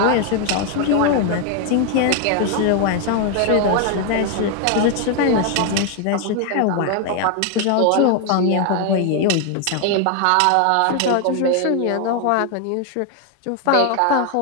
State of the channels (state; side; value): different; both; correlation 0.01